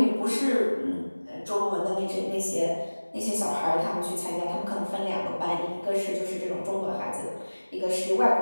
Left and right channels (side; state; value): both; inverted; correlation -1.00